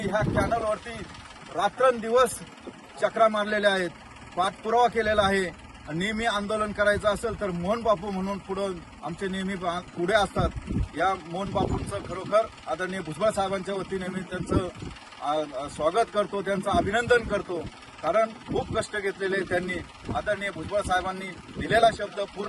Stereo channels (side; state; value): both; identical; correlation 1.00